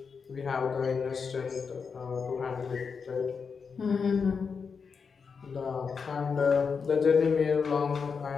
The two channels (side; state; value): right; quieter; 5.6 dB